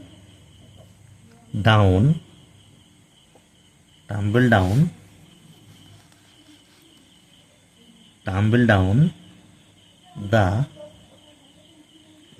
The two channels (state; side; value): identical; both; correlation 1.00